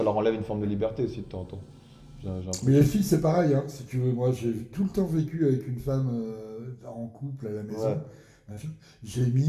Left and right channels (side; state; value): both; identical; correlation 1.00